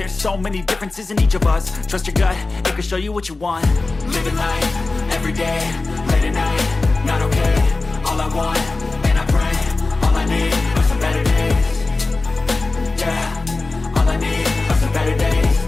so many differences in each of us. Trust your gut, it can show you what you want. Living life, every day, late at night, not okay. All I want, and I pray, all I need are some better days. Yeah, all I need are some better days.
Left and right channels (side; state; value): right; quieter; 3.5 dB